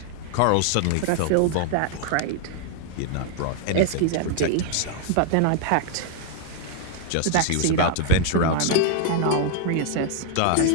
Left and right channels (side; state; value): both; different; correlation 0.00